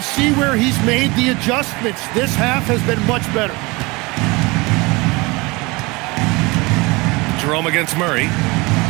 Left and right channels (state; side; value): quieter; left; 24.7 dB